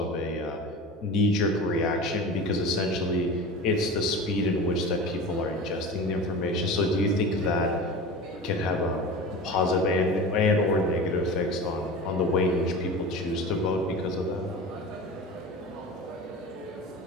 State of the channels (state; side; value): normal; both; correlation 0.32